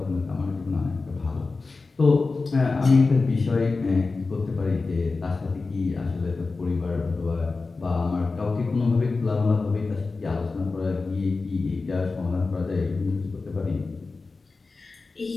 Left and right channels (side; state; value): right; quieter; 3.9 dB